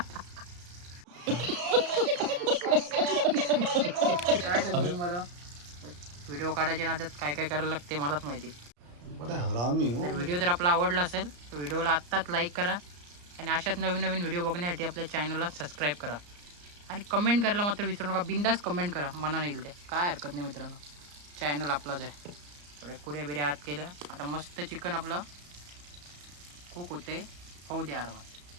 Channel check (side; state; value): left; late; 34 ms